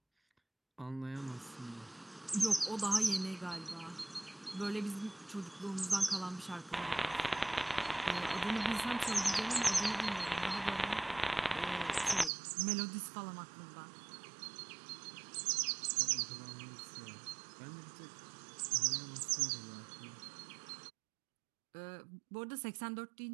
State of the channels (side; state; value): left; drops out; at 12.3 s